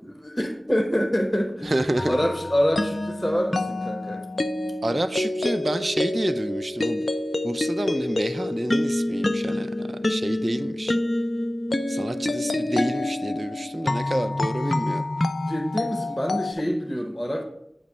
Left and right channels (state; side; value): normal; both; correlation 0.97